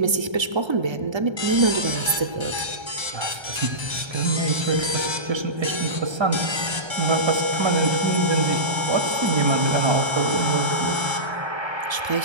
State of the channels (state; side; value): late; left; 1.3 ms